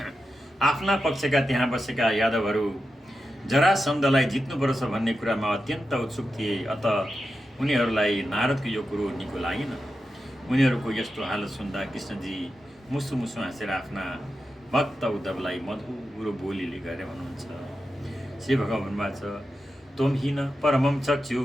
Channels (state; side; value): normal; both; correlation 0.90